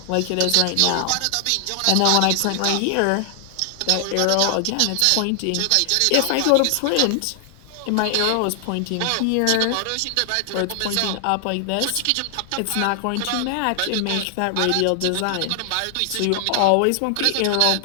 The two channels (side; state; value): both; different; correlation 0.00